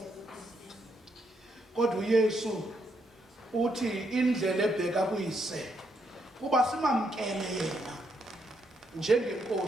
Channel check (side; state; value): both; normal; correlation 0.77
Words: Kodwa uYesu uthi indlela ebheka kuyise kuba simamkele yena